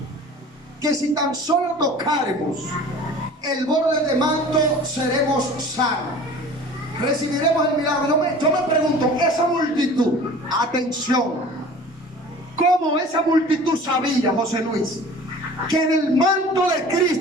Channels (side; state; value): both; normal; correlation 0.43